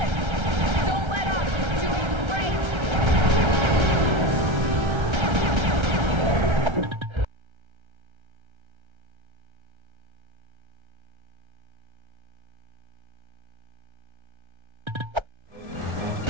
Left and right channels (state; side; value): late; left; 1.3 ms